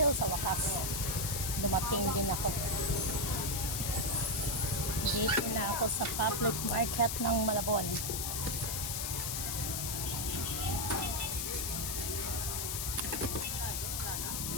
Sa wakas, dumating din ako. Dito na ako sa public market ng Malabon.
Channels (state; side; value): noise; left; hiss, 1 dB below the sound